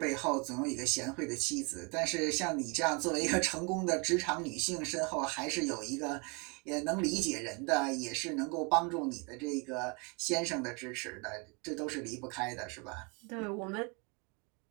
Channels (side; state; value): left; quieter; 31.8 dB